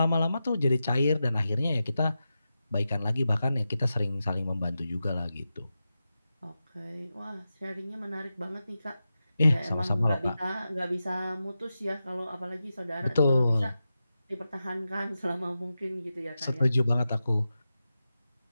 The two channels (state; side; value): inverted; both; correlation -0.91